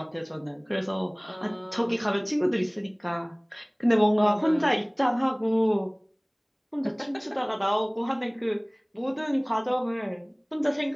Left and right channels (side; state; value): both; identical; correlation 1.00